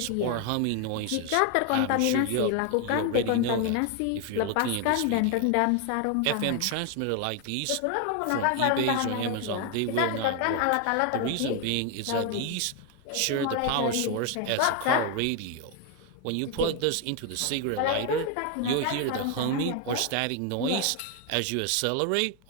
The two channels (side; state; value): both; different; correlation 0.01